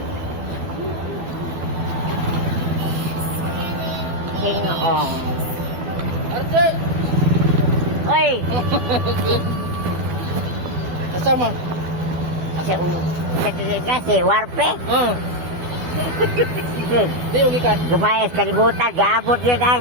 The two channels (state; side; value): late; left; 12 ms